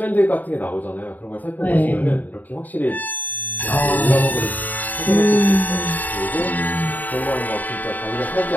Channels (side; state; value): right; late; 0.083 ms